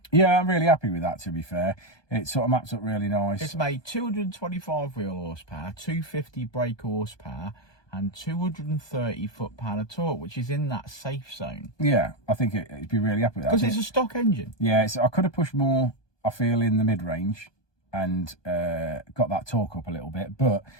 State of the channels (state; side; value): late; right; 1.2 ms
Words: Yeah, I'm really happy with that, to be fair. It sort of maps up really nice. It's made 225 wheel horsepower, 250 brake horsepower, and 230 foot-pound of torque, which is in that safe zone. Yeah, I think it'd be really happy with that. Because it's a stock engine. Yeah, I could have pushed more, I feel, in the mid-range and got that torque up a little bit, but